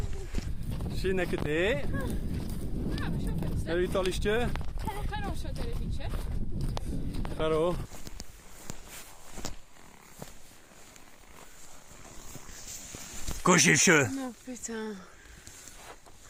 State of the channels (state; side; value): identical; both; correlation 1.00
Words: Sin ek het hè? Heb je het al eens tje? Kan zo televisie. Hallo. Koosje. No, putain.